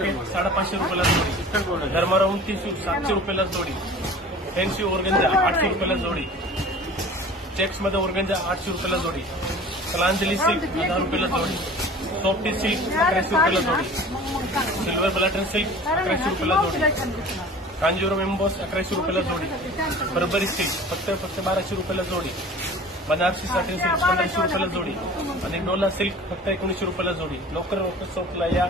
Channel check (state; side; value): normal; both; correlation 0.43